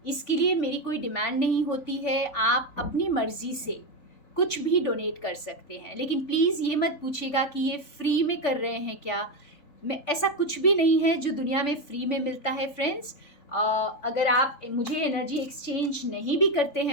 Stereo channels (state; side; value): late; right; 3.5 ms